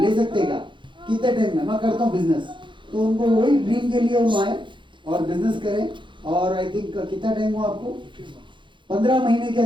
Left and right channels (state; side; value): late; left; 0.23 ms